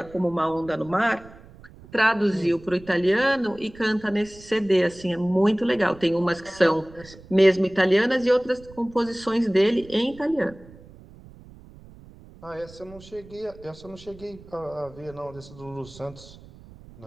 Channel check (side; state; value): right; noise; rumble, 21 dB below the sound